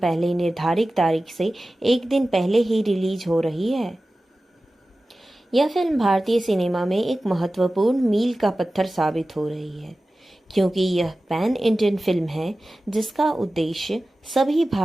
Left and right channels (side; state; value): both; normal; correlation 0.96